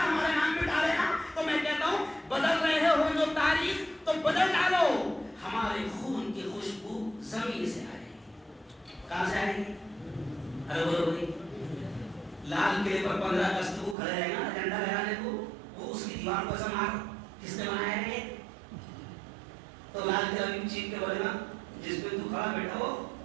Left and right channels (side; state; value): left; drops out; at 14.0 s